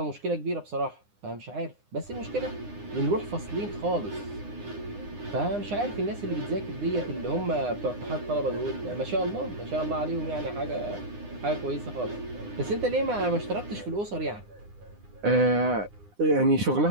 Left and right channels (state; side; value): late; left; 9.8 ms